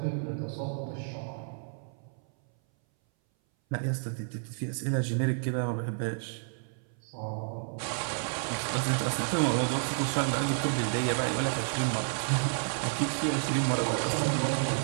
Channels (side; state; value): left; silent; 57 dB below the other